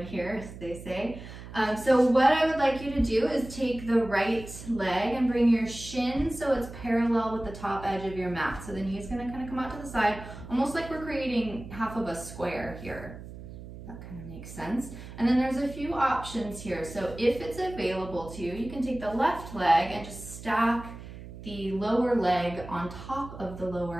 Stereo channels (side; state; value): right; noise; hum, 13 dB below the sound